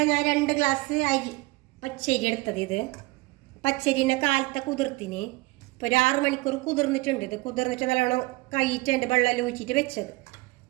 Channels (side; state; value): left; quieter; 22.1 dB